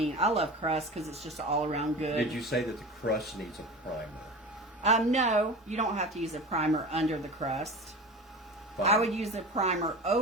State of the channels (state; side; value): normal; both; correlation 0.32